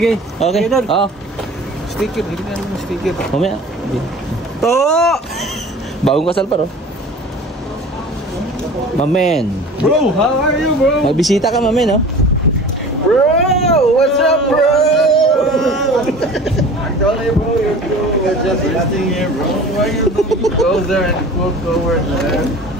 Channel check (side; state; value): both; normal; correlation 0.41